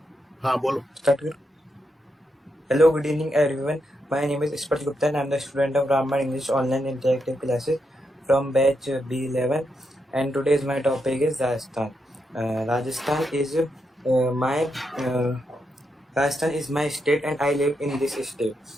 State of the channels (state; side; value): normal; both; correlation 0.83